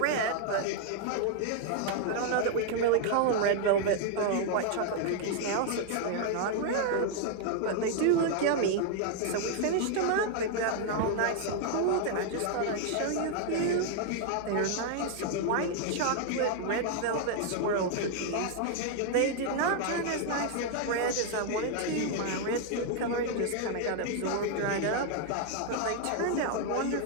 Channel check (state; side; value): different; both; correlation 0.00